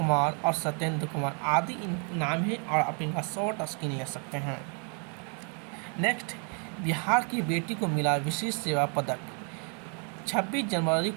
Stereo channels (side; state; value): left; quieter; 39.2 dB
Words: और सत्येंद्र कुमार आदि इन नाम हैं और आप इनका शॉर्ट स्क्रीन ले सकते हैं। नेक्स्ट, बिहार की बेटी को मिला विशेष सेवा पदक। 26 जनवरी